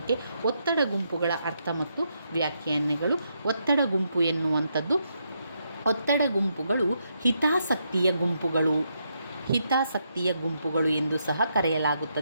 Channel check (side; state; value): both; inverted; correlation -0.79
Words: ಒತ್ತಡ ಗುಂಪುಗಳ ಅರ್ಥ ಮತ್ತು ವ್ಯಾಖ್ಯಾನಗಳು. ಒತ್ತಡ ಗುಂಪು ಎನ್ನುವಂಥದ್ದು, ಒತ್ತಡ ಗುಂಪುಗಳು ಹಿತಾಸಕ್ತಿಯ ಗುಂಪುಗಳು ಎಂದು ಸಹ